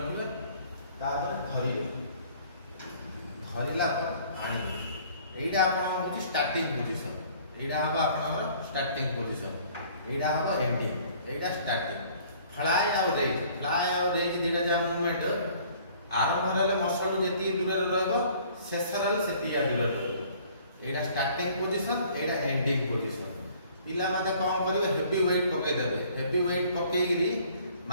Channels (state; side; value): inverted; both; correlation -0.55